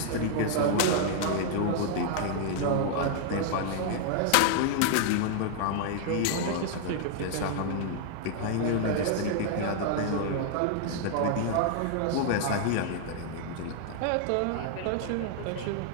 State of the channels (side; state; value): both; different; correlation -0.01